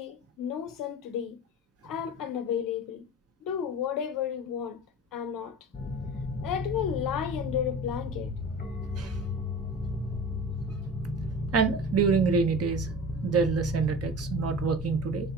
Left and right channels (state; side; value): normal; both; correlation 0.35